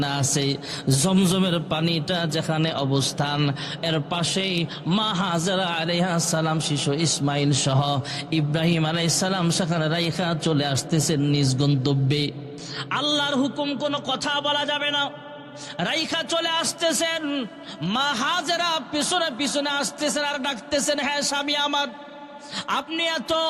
আছে, জমজমের পানিটা যেখানে অবস্থান, এর পাশেই মা হাজরা আলাইহিস সালাম শিশু ইসমাইল সহ ইব্রাহিম আলাইহিস সালাম সেখানে রাইখা চলে আসতেছেন নিজ গন্তব্যে। আল্লাহর হুকুম কোনো কথা বলা যাবে না, রাইখা চলে আসতেছেন। মা হাজরা পিছনে পিছনে আসতেছেন আর ডাকতেছেন, হ্যাঁ স্বামী আমার, আপনি এত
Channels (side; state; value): both; identical; correlation 1.00